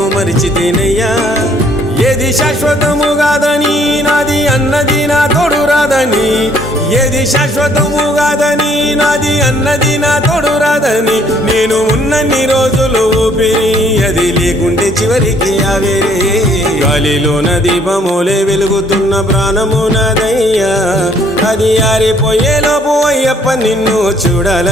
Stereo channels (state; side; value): normal; both; correlation 0.63